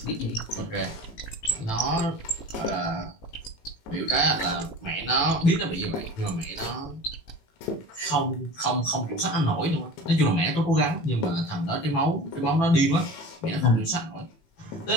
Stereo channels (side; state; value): right; late; 18 ms